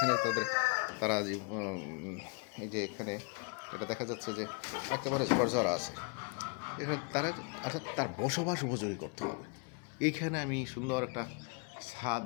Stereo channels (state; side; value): quieter; right; 35.3 dB